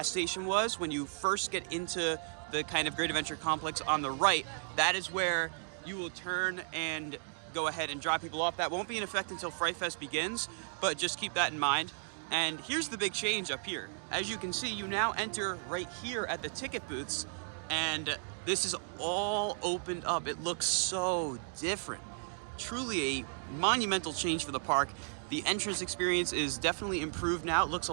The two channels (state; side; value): silent; left; digital silence